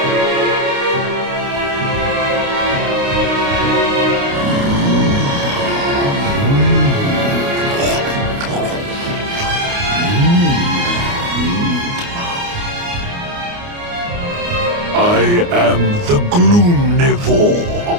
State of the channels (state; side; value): late; left; 29 ms